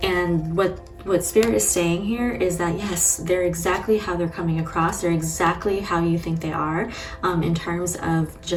And what Spirit is saying here is that yes, they're exactly how they're coming across. They're exactly how you think they are, in terms of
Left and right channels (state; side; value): identical; both; correlation 1.00